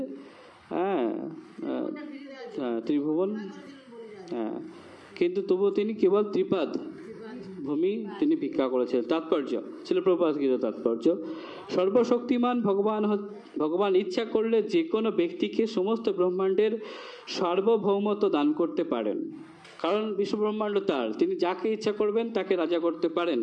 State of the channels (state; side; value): identical; both; correlation 1.00